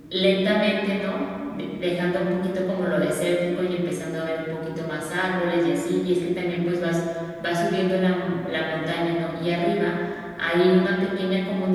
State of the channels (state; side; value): identical; both; correlation 1.00